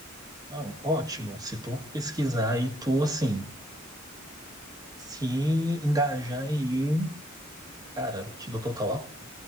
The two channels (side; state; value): both; normal; correlation 0.69